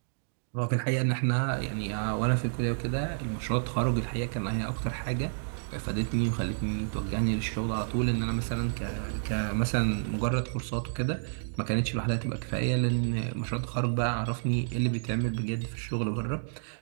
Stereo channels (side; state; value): left; silent; digital silence